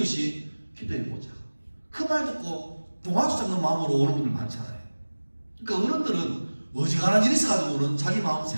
기도해보자, 그 말 듣고 동화수 잡는 마음으로 오는 분들 많잖아요. 그러니까 어른들은 어지간한 일이 있어가지고는 자기 마음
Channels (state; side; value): inverted; both; correlation -1.00